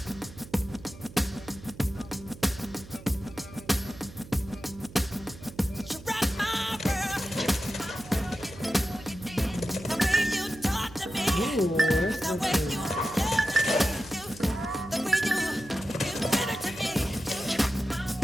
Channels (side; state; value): right; noise; hum, 17 dB below the sound